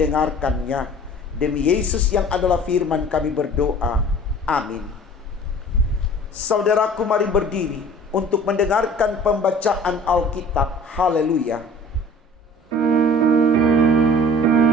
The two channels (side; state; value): both; normal; correlation 0.47